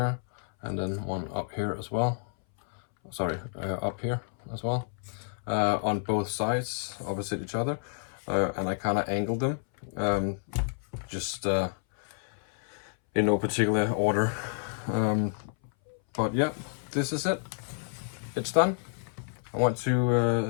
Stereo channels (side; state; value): right; silent; 58 dB below the other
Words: and then one up here as well. Sorry, up here as well. On both sides, opposite each other, and I kind of angled them, just in no particular order. But yeah, this is it. It's done. I want